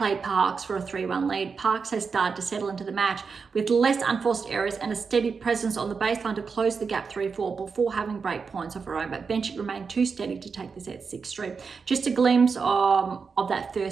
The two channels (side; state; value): left; quieter; 5.3 dB